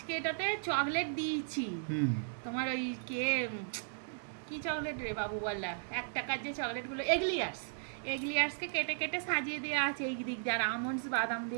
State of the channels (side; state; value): left; silent; digital silence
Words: এটাতে চকলেট দিয়েছি। তোমার ওই কি চকলেট রে বাবু বললা, 1 টাকার যে চকলেটগুলো, এগলিয়ার্সকে কেটে কেটে সাজিয়ে দেওয়া আছে এই দিক দিয়ে, আর আমন্ডস বাদাম